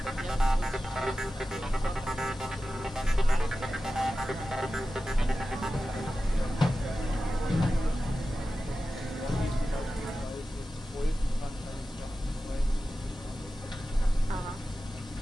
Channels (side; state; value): both; normal; correlation 0.94